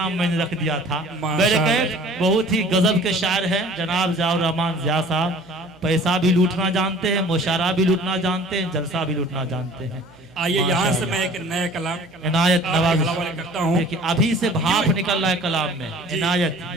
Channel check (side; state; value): right; noise; hum, 28 dB below the sound